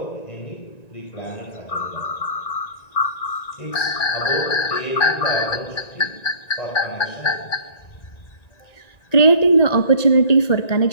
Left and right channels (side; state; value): right; late; 1.9 ms